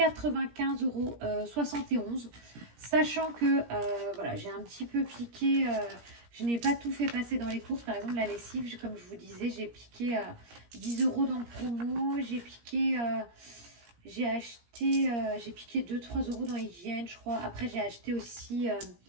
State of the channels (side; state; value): left; late; 17 ms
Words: €, sachant que voilà, j'ai un petit peu piqué. Je n'ai pas tout fait passer dans les courses. Par exemple, la lessive, comme je vous disais, j'ai piqué 10 € dans le promo. J'ai piqué, j'ai piqué 2-3 € dans hygiène, je crois. Après, j'ai acheté aussi